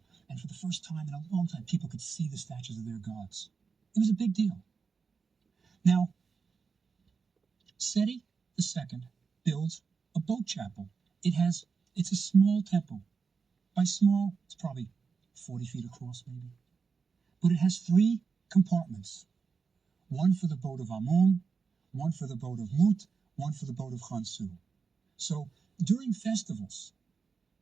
And for the first time in a long time, people could see the statues of their gods. It was a big deal. Now, Seti II builds a boat chapel. It's a small temple. By small, it's probably 40 feet across, maybe. But it has 3 compartments. One for the boat of Amun, one for the boat of Mut, one for the boat of Khonsu. So during festivals,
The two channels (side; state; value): left; quieter; 5.3 dB